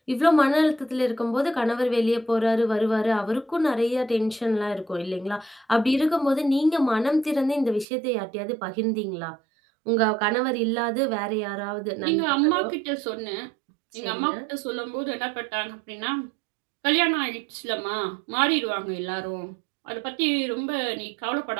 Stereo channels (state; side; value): drops out; left; at 7.9 s